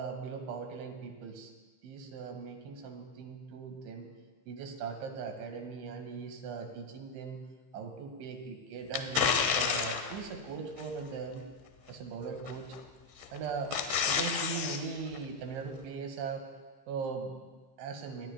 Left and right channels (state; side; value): late; left; 15 ms